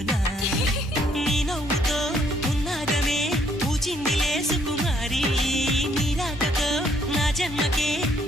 నీ నవ్వుతో ఉన్నాగమే పూచిందిలే సుకుమారి నీ రాకతో నా జన్మకే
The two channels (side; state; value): both; normal; correlation 0.68